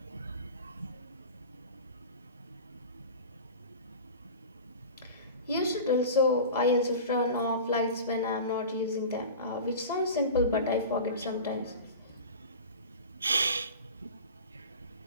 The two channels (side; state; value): both; inverted; correlation -0.34